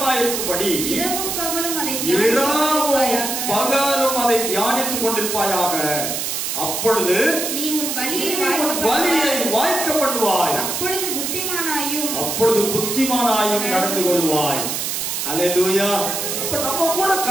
இரவும் பகலும் அதை தியானித்துக் கொண்டிருப்பாயாக. அப்பொழுது நீ உன் வழியை வாய்க்க பண்ணுவாய், அப்பொழுது புத்திமானாயும் நடந்து கொள்வாய். அல்லேலூயா. அப்ப நம்ம கூட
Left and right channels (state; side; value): noise; right; hiss, 2 dB below the sound